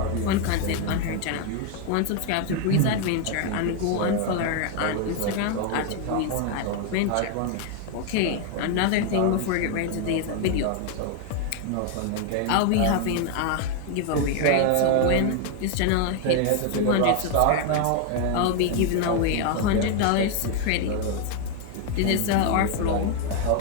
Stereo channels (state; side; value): different; both; correlation 0.00